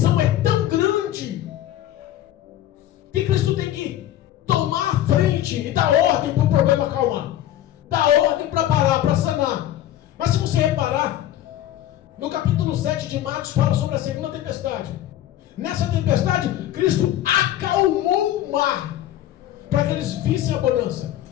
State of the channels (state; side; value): quieter; right; 12.7 dB